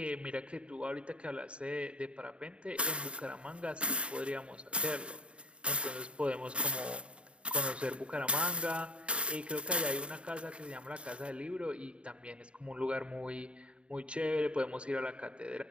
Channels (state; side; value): late; left; 0.058 ms